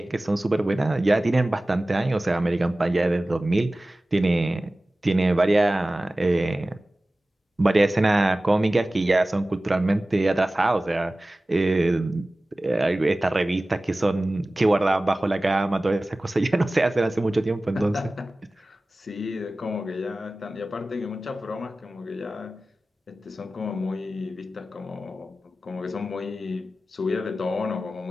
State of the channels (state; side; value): normal; both; correlation 0.97